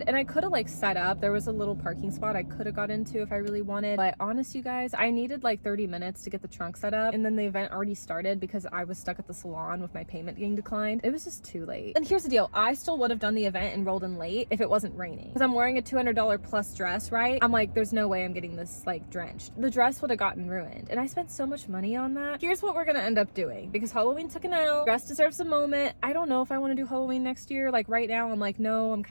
and I could have like set up. There was a little parking spot I could have got into if I really wanted, but honest, you guys, I needed like 30 minutes to get the trunk set up, and then the event already started because I was stuck at the salon with my payment getting declined. It was just too late. And here's the deal, I still would have done the event and rolled in late if it wasn't raining, because I'm wearing a $200 plus dress, right? I'm like, there's no way I'm getting this like drenched. The dress would have gotten ruined, and I spent so much money on that. Here's what we're gonna end up doing, because Halloween took an L. Dress deserves a moment. I don't know if I want to do Halloween next year. Like right now, I'm like, no, I'm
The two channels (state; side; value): inverted; both; correlation -1.00